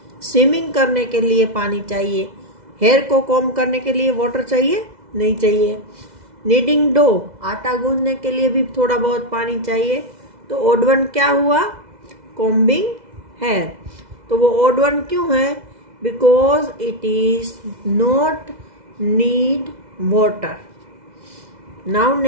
स्विमिंग करने के लिए पानी चाहिए, हेयर को कॉम्ब करने के लिए वाटर चाहिए? नहीं चाहिए। नीडिंग डो, आटा गूंदने के लिए भी थोड़ा बहुत पानी चाहिए। तो ओड वन क्या हुआ? Combing hair. तो वो ओड वन क्यों है? Because it is not need water. Now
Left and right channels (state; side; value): late; left; 2.0 ms